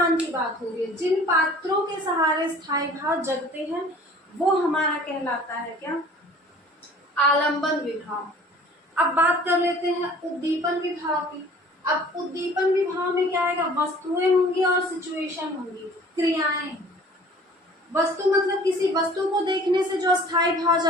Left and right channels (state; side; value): normal; both; correlation 0.49